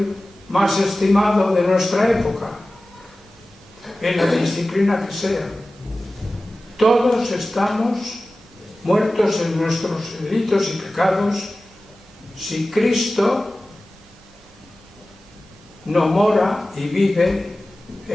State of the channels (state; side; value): normal; both; correlation 0.96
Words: más estimado de nuestra época, en la disciplina que sea, todos estamos muertos en nuestros delitos y pecados si Cristo no mora y vive